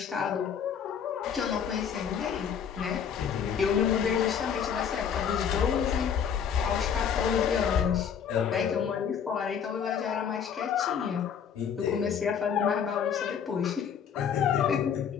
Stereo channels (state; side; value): quieter; right; 7.7 dB